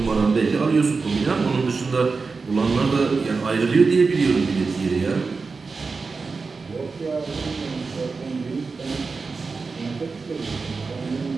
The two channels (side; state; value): left; quieter; 4.4 dB